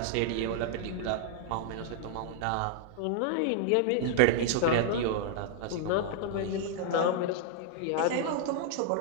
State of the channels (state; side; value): different; both; correlation -0.01